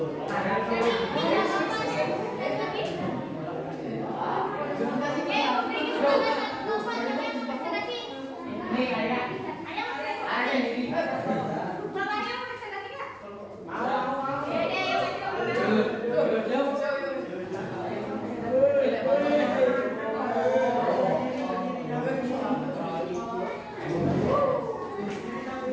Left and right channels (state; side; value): identical; both; correlation 1.00